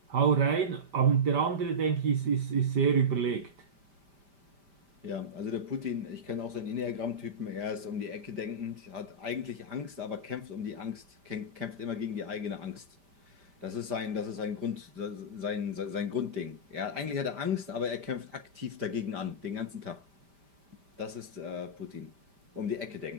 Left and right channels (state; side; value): late; left; 5.1 ms